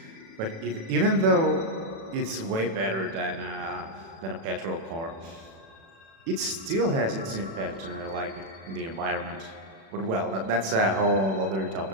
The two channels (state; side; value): late; left; 36 ms